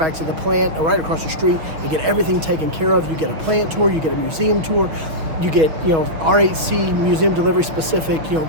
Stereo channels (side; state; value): left; late; 6.3 ms